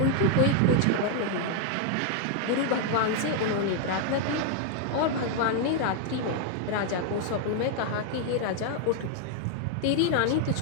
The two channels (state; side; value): different; both; correlation 0.00